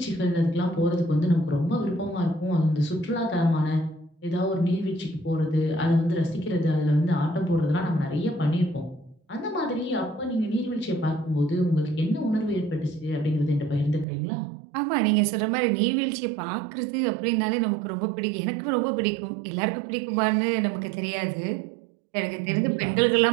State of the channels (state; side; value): drops out; left; at 14.1 s